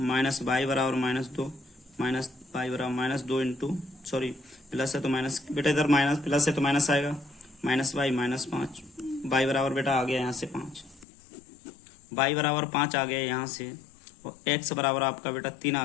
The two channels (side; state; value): right; drops out; at 11.1 s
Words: वाई बराबर -2, माइनस वाई बराबर -2 इंटू, सॉरी प्लस है तो माइनस, बेटा इधर माइनस प्लस है तो माइनस आएगा, माइनस वाई -5, वाई बराबर बेटा आ गया यहाँ से 5, वाई बराबर 5 आ गया यहाँ से, और एक्स बराबर आपका बेटा 3